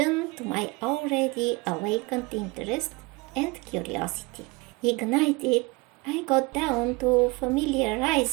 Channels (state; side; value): quieter; left; 25.7 dB